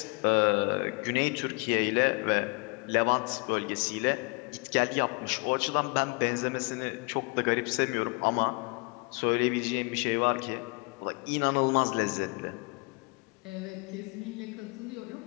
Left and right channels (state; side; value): quieter; right; 30.7 dB